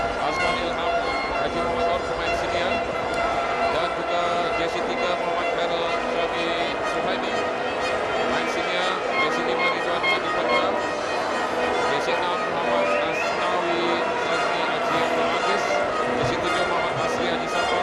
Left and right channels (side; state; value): both; identical; correlation 1.00